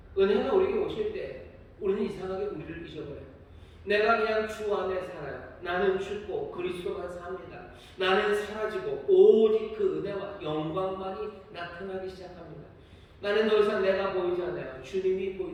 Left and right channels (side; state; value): both; identical; correlation 1.00